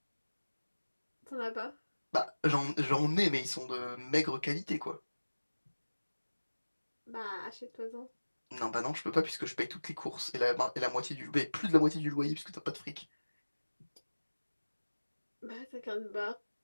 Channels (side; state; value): both; inverted; correlation -1.00